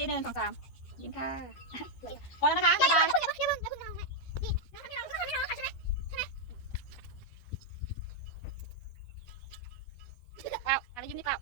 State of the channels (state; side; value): late; right; 12 ms